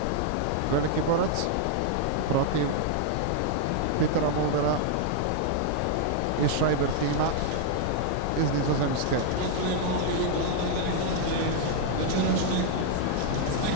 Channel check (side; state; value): both; different; correlation 0.00